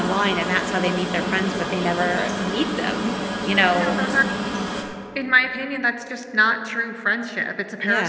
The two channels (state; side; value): identical; both; correlation 1.00